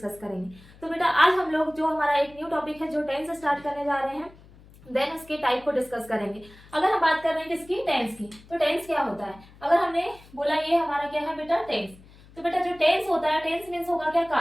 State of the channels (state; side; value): noise; left; hum, 23 dB below the sound